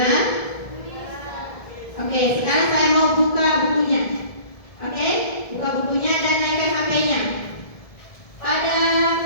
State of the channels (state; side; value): late; right; 1.7 ms